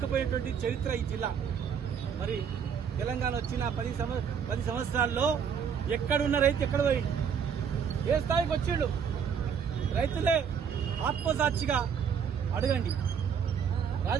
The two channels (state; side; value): quieter; left; 7.2 dB